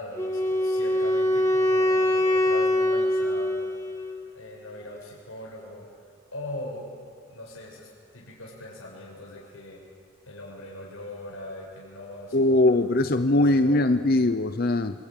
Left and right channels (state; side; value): normal; both; correlation 0.60